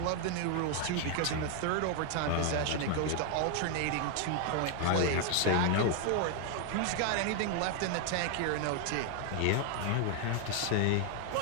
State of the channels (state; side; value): different; both; correlation 0.00